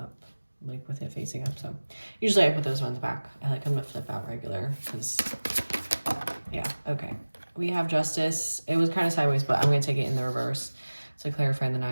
like with it facing up. So usually I put those ones back. I like them to flip out regular because, yeah, okay. we have Justice. It was kind of sideways, but I'm going to take it in the reverse to clarify the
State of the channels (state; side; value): inverted; both; correlation -1.00